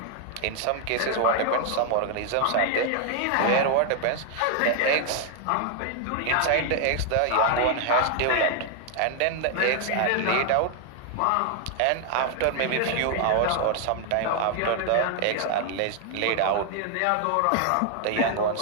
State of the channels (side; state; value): both; different; correlation 0.00